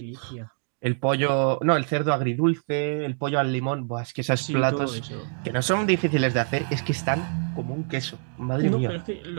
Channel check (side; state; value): left; silent; 61 dB below the other